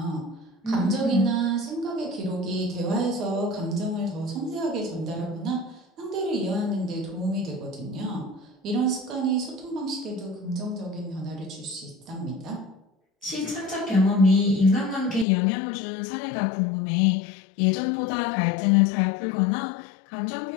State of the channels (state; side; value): drops out; right; at 15.2 s